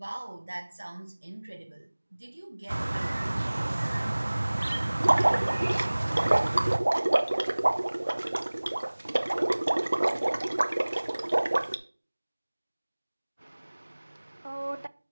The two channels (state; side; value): inverted; both; correlation -1.00